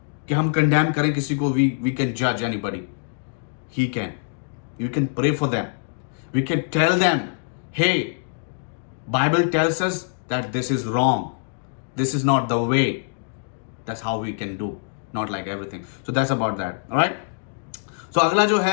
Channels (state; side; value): silent; right; digital silence